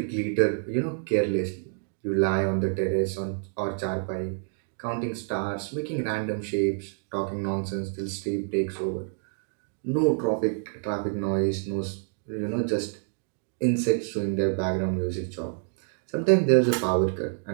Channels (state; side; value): silent; left; digital silence